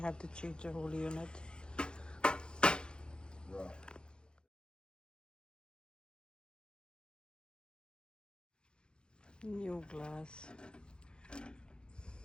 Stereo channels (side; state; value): right; late; 0.049 ms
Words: to change the whole unit. Right. New glass.